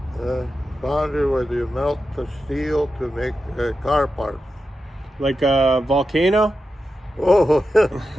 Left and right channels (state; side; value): normal; both; correlation 0.90